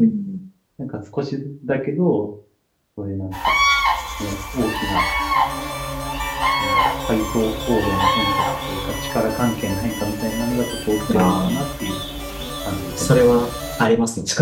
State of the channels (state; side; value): identical; both; correlation 1.00